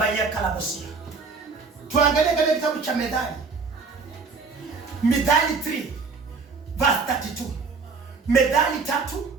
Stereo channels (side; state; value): left; quieter; 4.7 dB